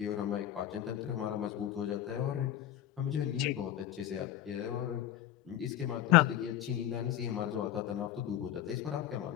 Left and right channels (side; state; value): right; quieter; 11.8 dB